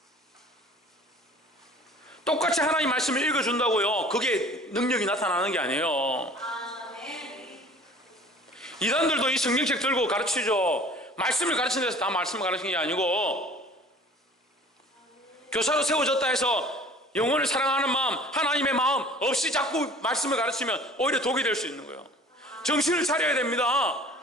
똑같이 하나님 말씀을 읽어준다고요. 그게 능력이 나타나는 게 아니에요. 이단들도 이 성경책 들고 가르치죠. 말씀을 가르치는 데서 다 말씀을 가르치는 게 아니고 교사로 세워졌다 해서 영혼을 사랑하는 마음, 하나님의 마음 없이 자꾸 말씀을 가르치면 오히려 독이 될 수 있는 거예요. 정신을 차려야 됩니다.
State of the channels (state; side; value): normal; both; correlation 0.48